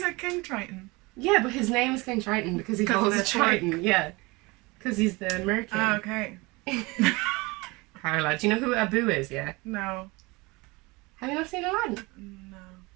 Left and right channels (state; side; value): quieter; left; 24.5 dB